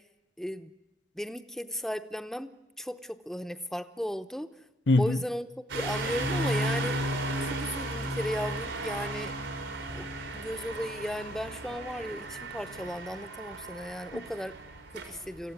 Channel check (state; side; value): normal; both; correlation 0.69